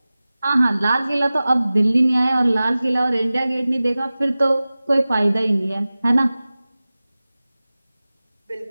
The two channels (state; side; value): inverted; both; correlation -0.97